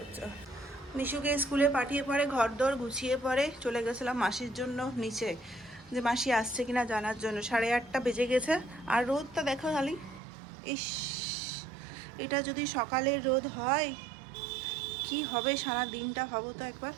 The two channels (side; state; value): left; drops out; at 10.2 s